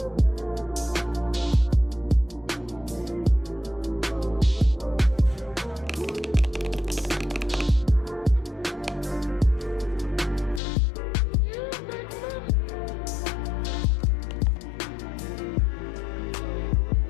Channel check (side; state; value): right; drops out; at 10.6 s